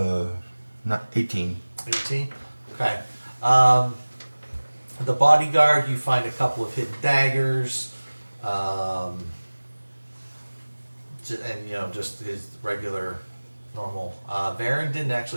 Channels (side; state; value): both; inverted; correlation -1.00